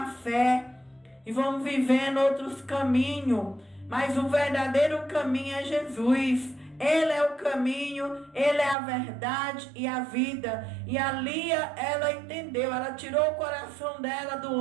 fé e vamos vivendo outros caminhos. Mas o verdadeiro caminho é Jesus. Ele é o caminho, Ele é a verdade e a vida. E a Lia, ela entendeu, ela tirou o coração dela do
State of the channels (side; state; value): left; drops out; at 8.8 s